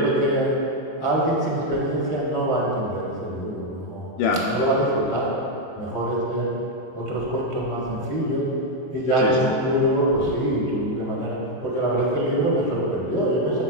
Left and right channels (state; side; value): late; right; 23 ms